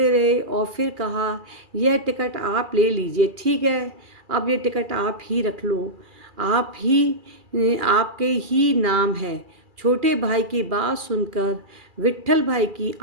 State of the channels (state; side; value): late; left; 2.4 ms